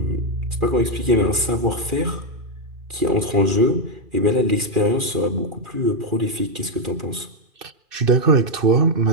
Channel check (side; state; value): left; late; 2.4 ms